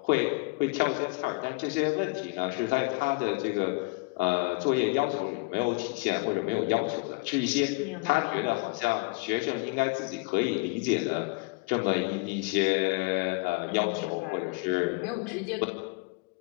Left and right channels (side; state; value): right; quieter; 28.7 dB